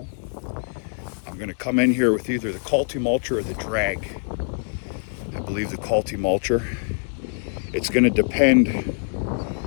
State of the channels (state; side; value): silent; right; digital silence